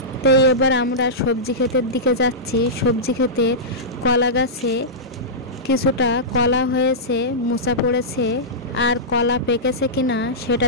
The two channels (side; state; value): both; normal; correlation -0.14